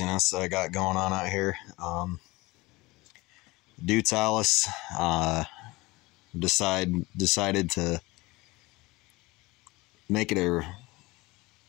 that I got going on out here. Deutz Allis decided to make it a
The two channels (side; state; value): right; quieter; 22.0 dB